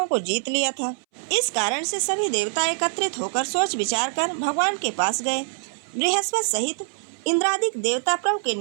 को जीत लिया था। इस कारण से सभी देवता एकत्रित होकर सोच विचार कर भगवान के पास गए। बृहस्पति सहित इंद्रादिक देवता प्रभु के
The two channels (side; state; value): left; silent; 62 dB below the other